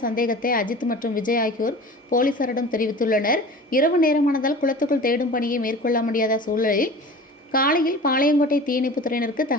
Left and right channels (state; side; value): normal; both; correlation 0.39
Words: சந்தேகத்தை அஜித் மற்றும் விஜய் ஆகியோர் போலீசாரிடம் தெரிவித்துள்ளனர். இரவு நேரமானதால் குளத்துக்குள் தேடும் பணியை மேற்கொள்ள முடியாத சூழலில் காலையில் பாளையங்கோட்டை தீயணைப்புத் துறையினருக்கு